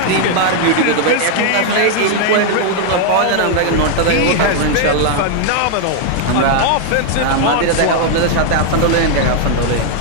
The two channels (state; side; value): different; both; correlation 0.00